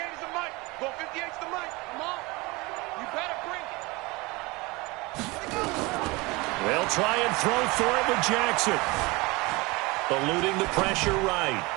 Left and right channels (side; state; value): left; quieter; 24.1 dB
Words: the Mike. Go 58 is the Mike. Come on. You better bring it. They'll try and throw for it with Jackson. Eluding the pressure right.